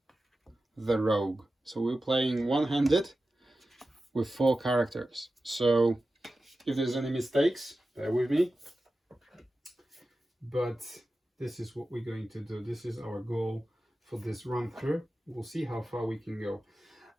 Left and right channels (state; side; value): normal; both; correlation 0.94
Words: the rogue. So we're playing one-handed with 4 characters. So if there's any mistakes, bear with me. But this is what we're going to do. This is our goal for this run through. We'll see how far we can go.